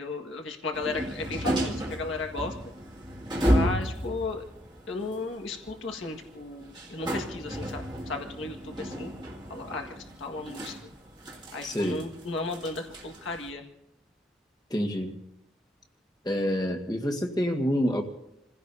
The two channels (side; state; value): both; normal; correlation 0.72